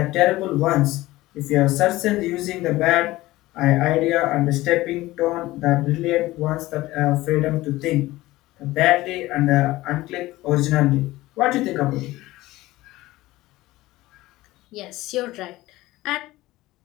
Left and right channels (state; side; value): quieter; right; 18.0 dB